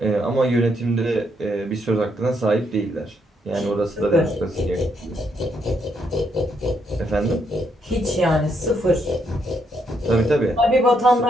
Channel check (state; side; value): normal; both; correlation 0.76